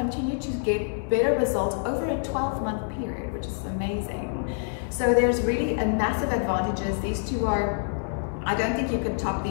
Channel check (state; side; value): silent; right; digital silence